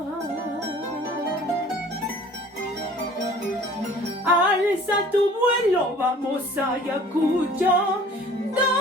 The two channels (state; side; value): normal; both; correlation 0.49